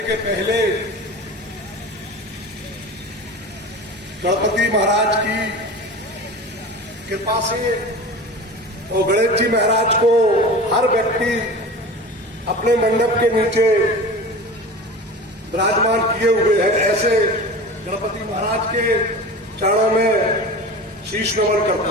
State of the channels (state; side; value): normal; both; correlation 0.33